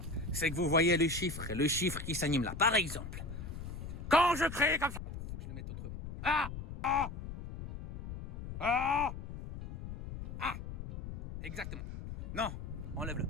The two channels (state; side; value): noise; left; rumble, 8 dB below the sound